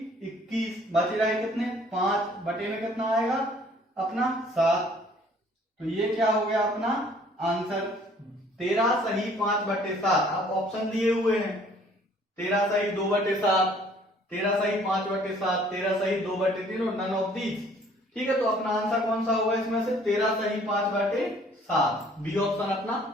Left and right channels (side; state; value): both; normal; correlation 0.57